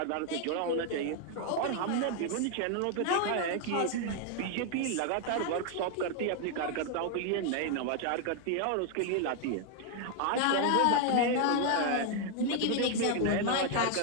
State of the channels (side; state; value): both; different; correlation 0.01